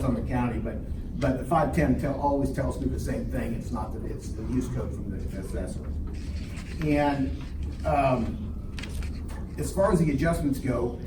on the county, but the 510 always tells me the same thing, it's not that, it's the use code from the assessor. And, as far as the adjustments go,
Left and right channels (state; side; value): identical; both; correlation 1.00